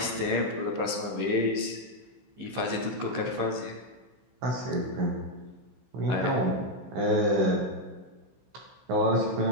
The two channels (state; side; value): late; left; 15 ms